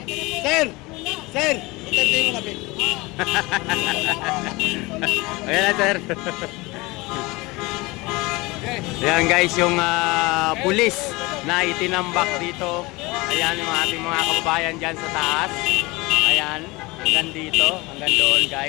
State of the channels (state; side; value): quieter; right; 23.2 dB